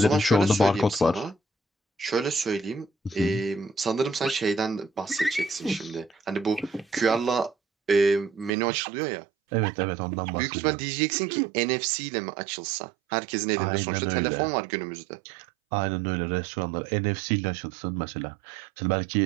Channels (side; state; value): left; drops out; at 8.5 s